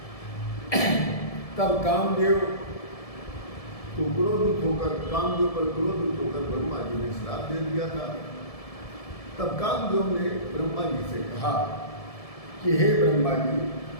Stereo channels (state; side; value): late; right; 1.7 ms